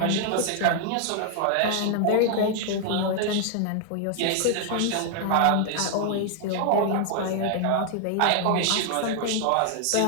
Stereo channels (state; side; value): different; both; correlation 0.00